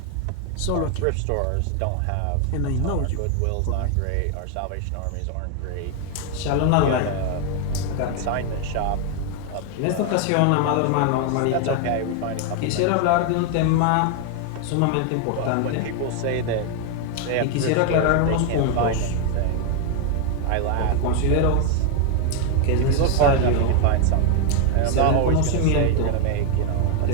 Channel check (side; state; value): both; different; correlation 0.01